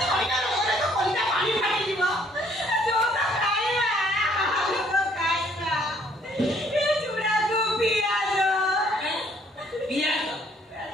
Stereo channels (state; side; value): normal; both; correlation 0.63